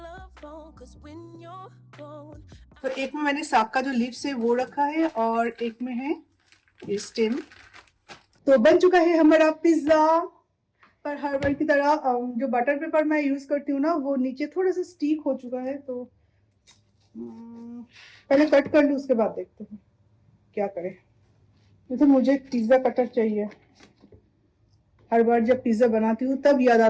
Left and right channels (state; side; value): identical; both; correlation 1.00